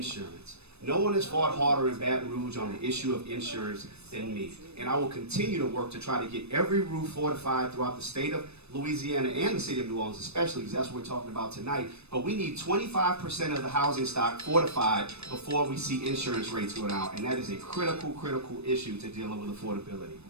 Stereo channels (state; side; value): late; left; 0.80 ms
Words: No one has fought harder in Baton Rouge on the issue of insurance than me. And I will continue to work to try to get every roof fortified throughout the state of Louisiana and the city of New Orleans especially, because that's what we're talking about tonight. But we need 25% of the housing stock fortified before we see insurance rates go down. And that is a critical, critical issue to dealing with affordability.